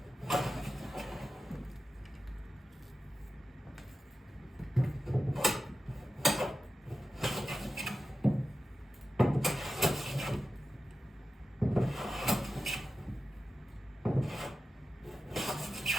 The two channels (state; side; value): normal; both; correlation 0.92